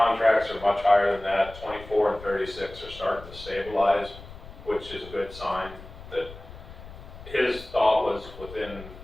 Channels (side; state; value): left; noise; rumble, 16 dB below the sound